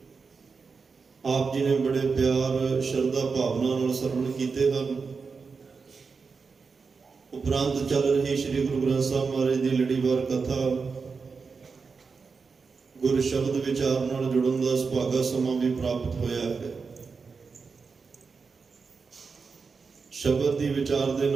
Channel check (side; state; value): left; quieter; 5.0 dB